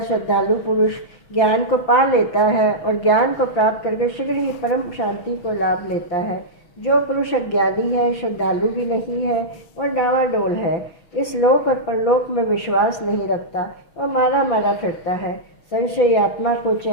पुरुष ज्ञान को पा लेता है और ज्ञान को प्राप्त करके शीघ्र ही परम शांति को लाभ लेता है। जो पुरुष अज्ञानी है, श्रद्धालु भी नहीं है और डावाडोल है, इस लोक और परलोक में विश्वास नहीं रखता और मारा मारा फिरता है, संशयी आत्मा को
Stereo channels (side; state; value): right; late; 5.9 ms